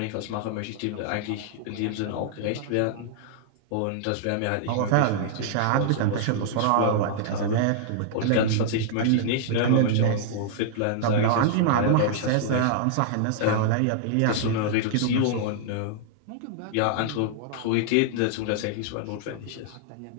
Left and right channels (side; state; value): both; different; correlation -0.01